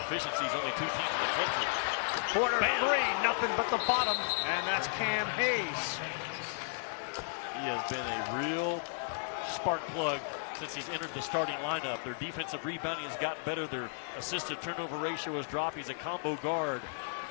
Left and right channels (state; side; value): silent; right; digital silence